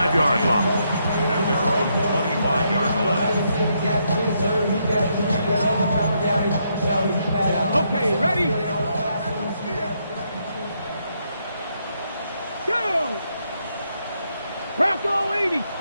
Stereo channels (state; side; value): inverted; both; correlation -0.77